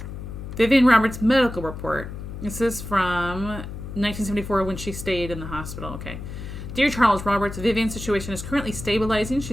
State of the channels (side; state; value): left; noise; hum, 9 dB below the sound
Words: Vivian Roberts' medical report. This is from 1974 when she stayed in the hospital. Okay. Dear Charles Roberts, Vivian's situation is currently stabilizing.